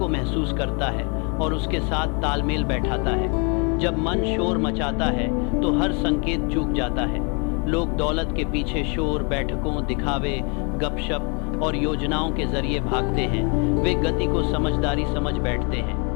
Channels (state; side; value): quieter; right; 34.1 dB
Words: महसूस करता है और उसके साथ तालमेल बैठाता है। जब मन शोर मचाता है तो हर संकेत चूक जाता है। लोग दौलत के पीछे शोर, बैठकों, दिखावे, गपशप और योजनाओं के जरिए भागते हैं। वे गति को समझदारी समझ बैठते